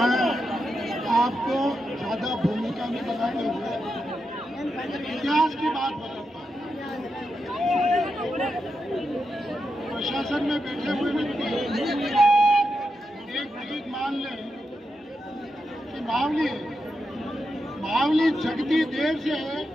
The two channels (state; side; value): normal; both; correlation 0.86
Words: आपको ज्यादा भूमिका में बताते हुए इतिहास की बात बताता हूँ। प्रशासन में बैठे हुए व्यक्ति एक चीज मान लें कि मावली जगती देर से है